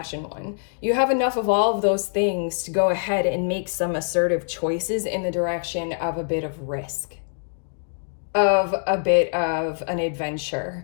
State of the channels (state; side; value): silent; right; digital silence